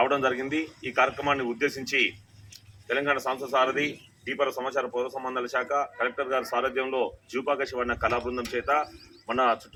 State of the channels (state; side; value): identical; both; correlation 1.00